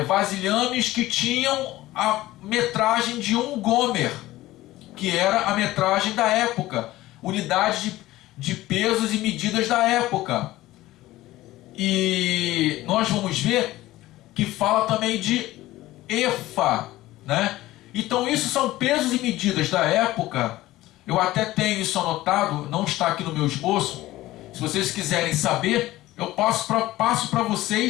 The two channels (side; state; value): right; quieter; 16.7 dB